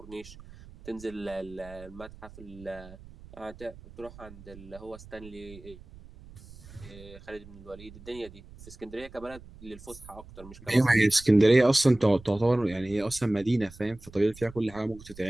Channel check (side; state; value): right; noise; rumble, 19 dB below the sound